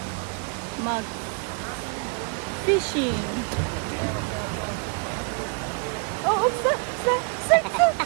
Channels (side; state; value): left; quieter; 37.3 dB